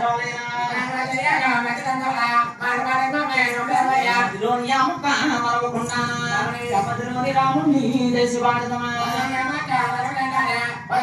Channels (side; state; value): both; identical; correlation 1.00